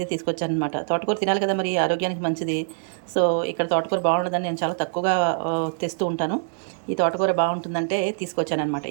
తీసుకొచ్చానమాట. తోటకూర తినాలి కదా, మరి ఆరోగ్యానికి మంచిది. సో ఇక్కడ తోటకూర బాగుండదని నేను చాలా తక్కువగా తెస్తూ ఉంటాను. ఈ తోటకూర బాగుంటుందంటే తీసుకొచ్చానమాట.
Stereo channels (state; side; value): silent; left; digital silence